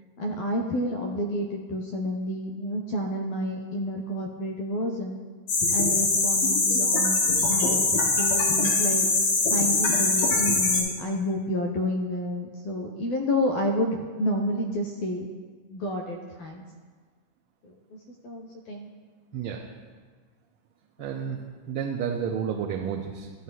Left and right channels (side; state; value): right; late; 12 ms